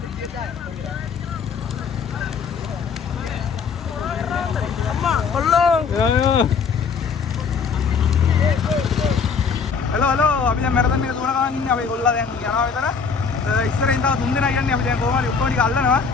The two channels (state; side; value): quieter; right; 5.7 dB